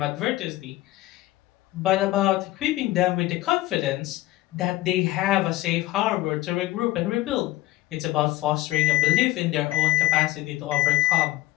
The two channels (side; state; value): right; quieter; 16.7 dB